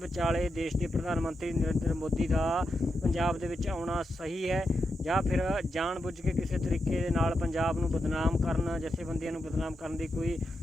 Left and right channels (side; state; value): both; normal; correlation 0.86